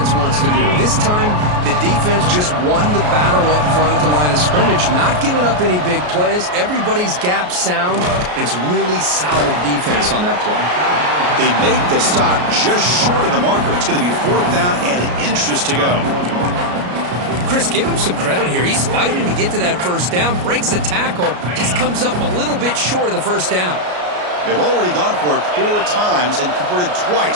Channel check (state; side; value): late; left; 33 ms